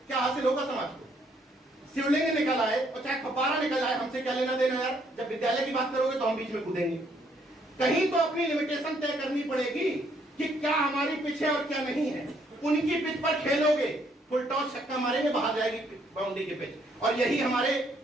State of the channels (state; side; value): normal; both; correlation 0.69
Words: क्या हासिल होगा समाज को? शिवलिंग निकल आए और चाहे फपारा निकल आए, हमसे क्या लेना देना यार? जब विद्यालय की बात करोगे तो हम बीच में कूदेंगे। कहीं तो अपनी लिमिटेशन तय करनी पड़ेगी कि क्या हमारी पिच है और क्या नहीं है। उनकी पिच पर खेलोगे, फुल टॉस छक्का मारेंगे, बाहर जाएगी बाउंड्री के पिच। और यही हमारे